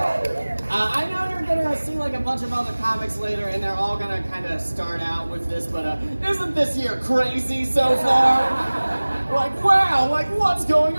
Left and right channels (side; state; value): both; inverted; correlation -1.00